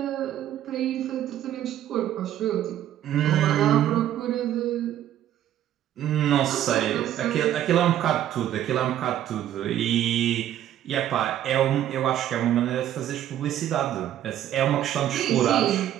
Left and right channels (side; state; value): left; quieter; 11.6 dB